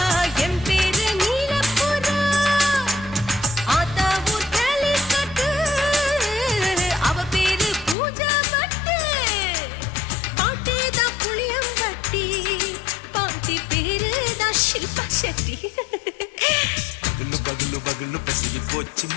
என் பேரு நீலப்புறா ஆத்தா ஊர் கேலிக்கட்டு அவ பேரு பூஜா பட்டு பாட்டி தான் புளியம்பட்டி பாட்டி பேரு தான் ஷில்பா செட்டி பகலு பகலு பகலு பசிக்கு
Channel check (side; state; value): right; drops out; at 8.0 s